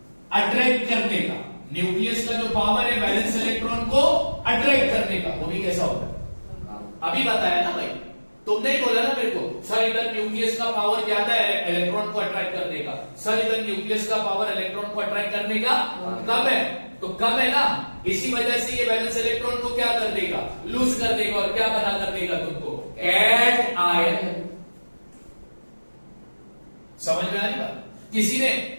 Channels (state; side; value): inverted; both; correlation -1.00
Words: अट्रैक्ट करने का, न्यूक्लियस का जो पावर है वैलेंस इलेक्ट्रॉन को अट्रैक्ट करने का, वो भी कैसा होता है, अभी बताया ना भाई, तुमने ही बोला ना मेरे को, सर इधर न्यूक्लियस का पावर ज्यादा है इलेक्ट्रॉन को अट्रैक्ट करने का, सर इधर न्यूक्लियस का पावर इलेक्ट्रॉन को अट्रैक्ट करने का कम है, तो कम है ना, इसी वजह से ये वैलेंस इलेक्ट्रॉन को क्या कर देगा, लूज कर देगा, और क्या बना कर देगा तुमको, कैट आयन। समझ में आ रही बात?